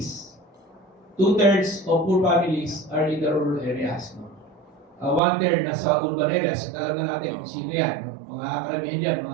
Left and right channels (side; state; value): left; drops out; at 5.2 s